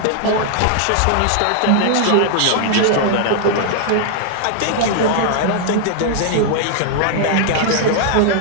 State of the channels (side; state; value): both; different; correlation 0.00